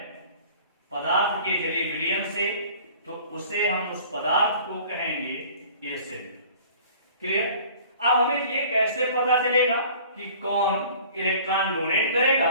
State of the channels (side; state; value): both; inverted; correlation -0.48